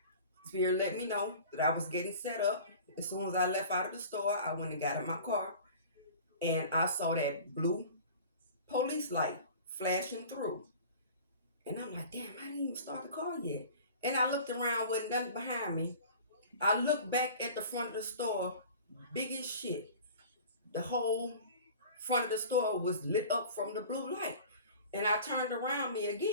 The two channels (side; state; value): both; inverted; correlation -0.42